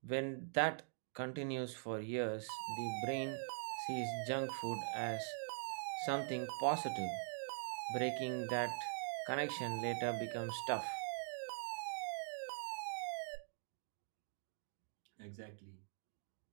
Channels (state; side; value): silent; left; digital silence